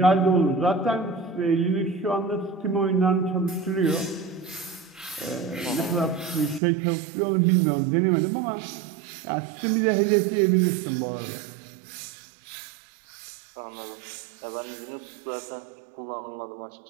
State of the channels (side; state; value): left; drops out; at 6.6 s